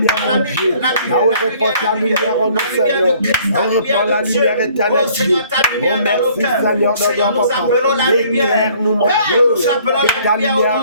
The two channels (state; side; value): inverted; both; correlation -0.58